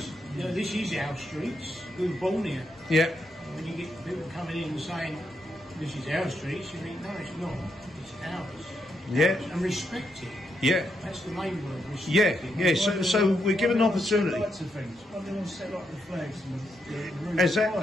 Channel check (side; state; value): both; normal; correlation 0.80